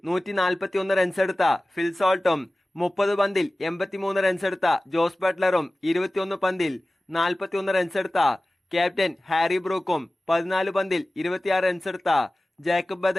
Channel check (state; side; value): normal; both; correlation 0.97